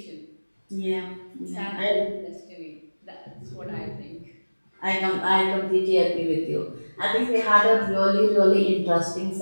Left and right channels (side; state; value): both; inverted; correlation -1.00